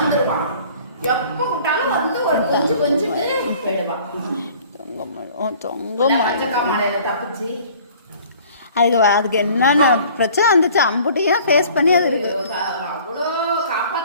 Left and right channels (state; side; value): inverted; both; correlation -0.51